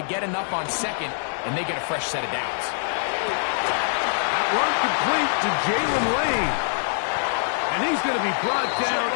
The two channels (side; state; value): right; silent; digital silence